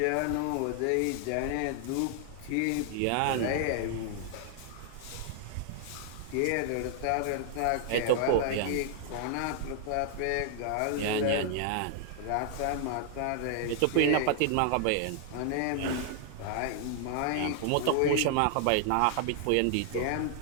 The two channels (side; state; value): both; different; correlation 0.00